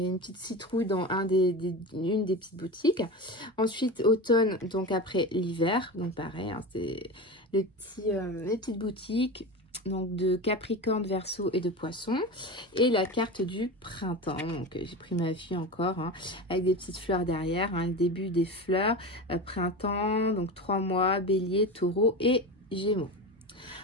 y a une petite citrouille dans une des petites boutiques. Ensuite, automne, donc après l'hiver. Donc, pareil, hein, c'est les petites boutiques. Donc, de Capricorne, Verseau et de Poisson. Et la carte du printemps. Donc, j'ai pris ma fille encore, hein, avec des petites fleurs derrière, hein, le début des fleurs. Printemps, donc 3 mois, Bélier, Taureau et Gémeaux.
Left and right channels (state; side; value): normal; both; correlation 0.25